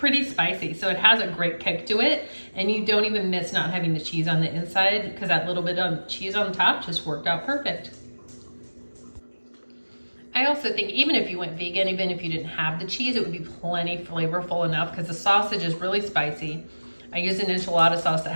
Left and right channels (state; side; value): inverted; both; correlation -1.00